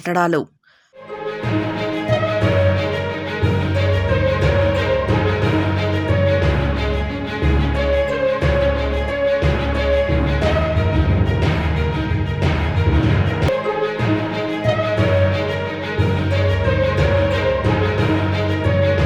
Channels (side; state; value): both; identical; correlation 1.00